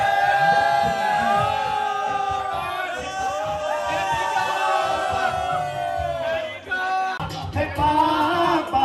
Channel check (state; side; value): identical; both; correlation 1.00